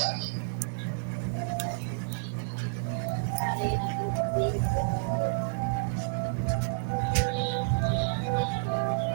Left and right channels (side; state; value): left; silent; digital silence